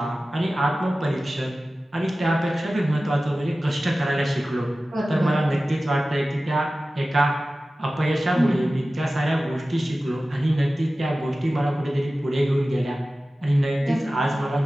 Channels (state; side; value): normal; both; correlation 0.96